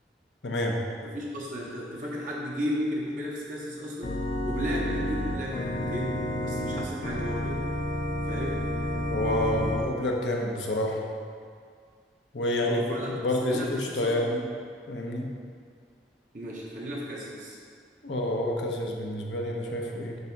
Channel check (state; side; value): normal; both; correlation 0.47